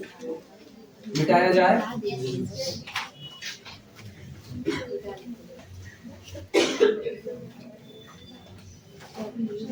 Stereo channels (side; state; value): both; identical; correlation 1.00